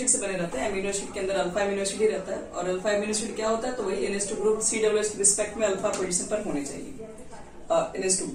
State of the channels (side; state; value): both; identical; correlation 1.00